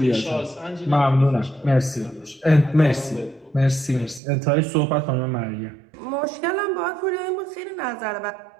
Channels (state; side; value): drops out; left; at 4.2 s